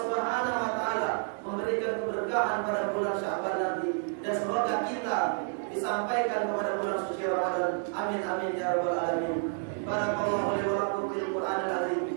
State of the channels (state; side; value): silent; left; 58 dB below the other